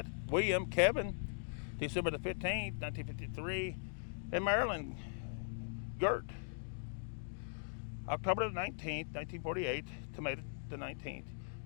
William Kevin, December the 15th, 1953, and Marilyn Gert, October the 19th, 1948 to May the 19th,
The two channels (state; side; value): silent; right; digital silence